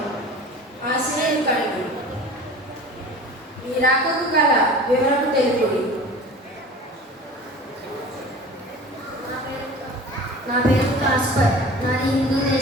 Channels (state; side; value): normal; both; correlation 0.39